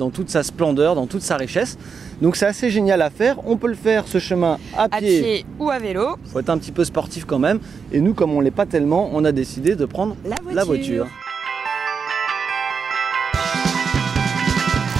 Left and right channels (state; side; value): quieter; left; 5.9 dB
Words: toute sa splendeur, dans toute sa richesse. Donc c'est assez génial à faire. On peut le faire ce chemin à pied ou à vélo. Il faut être un petit peu sportif quand même. Et nous, comme on ne l'est pas tellement, on a décidé de prendre la voiture.